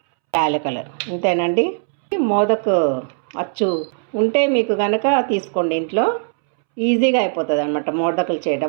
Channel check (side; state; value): left; silent; 66 dB below the other